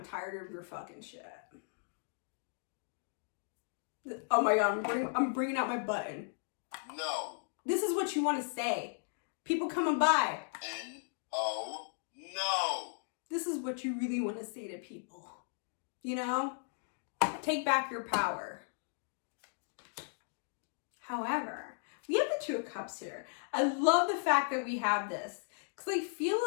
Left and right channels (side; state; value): right; silent; digital silence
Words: tired of your fucking shit. Oh my God, I'm bringing out my button. No. This is what you want to say. People coming by. N-O, no. This is what you really want to say to people. You know? Take back your power. However, we have the Two of Cups here. I love the fact that we have this. Because I feel